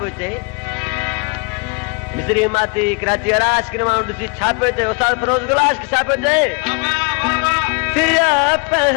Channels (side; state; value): right; quieter; 33.1 dB